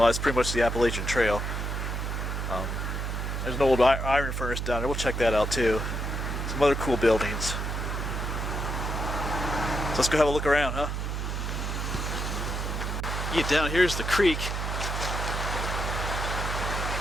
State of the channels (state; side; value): noise; right; hum, 3 dB below the sound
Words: is pretty much the Appalachian Trail. There's an old iron furnace down there. We'll check that out too. Some other cool buildings. So let's go have a look around, huh? Yeah, down here's the creek.